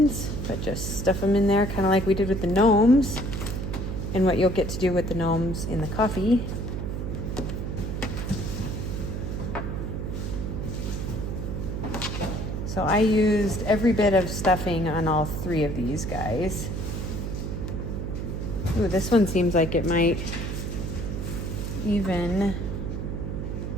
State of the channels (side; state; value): right; noise; hum, 4 dB below the sound